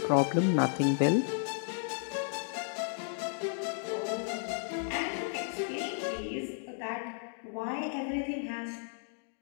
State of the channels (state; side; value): silent; right; 55 dB below the other